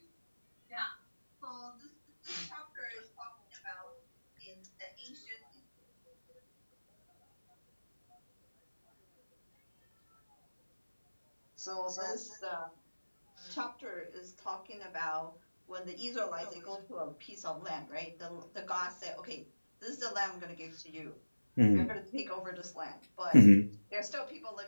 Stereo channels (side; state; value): both; inverted; correlation -1.00